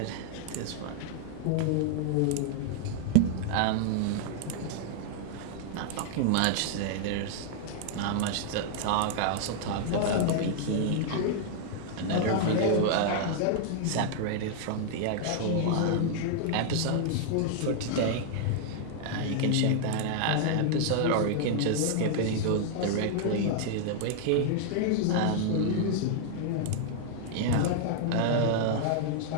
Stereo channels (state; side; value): different; both; correlation -0.01